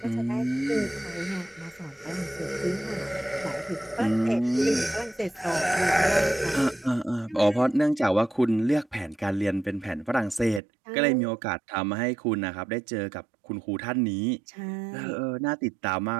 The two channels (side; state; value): left; drops out; at 10.6 s